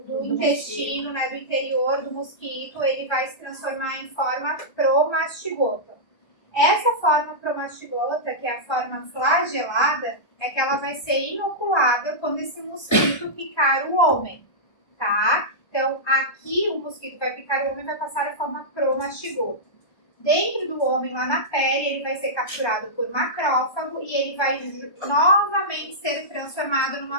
intestino, né, do interior do mosquito, ele vai se transformar em forma promastigota. Essa forma promastigota, que é a forma flagelada, é que ela vai ser inoculada quando esse mosquito picar o homem, tá? Então, aqui o mosquito vai picar o homem e vai passar a forma promastigota. Dentro do homem, lá na pele, ele vai ser capturado por macrófago e ele vai novamente ser transformado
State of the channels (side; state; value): right; late; 1.2 ms